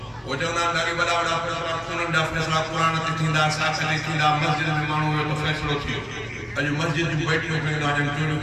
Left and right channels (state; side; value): identical; both; correlation 1.00